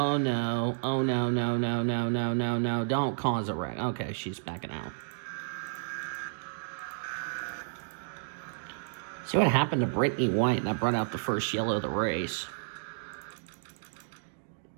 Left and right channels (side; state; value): left; silent; digital silence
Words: no, oh no, no, no, no, no, no, no, don't cause a wreck. Okay, she's backing out. See what happened to Brittany White, and that brought out the first yellow of the race.